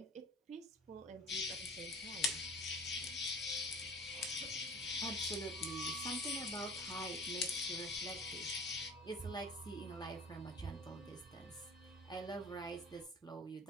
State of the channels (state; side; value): normal; both; correlation 0.43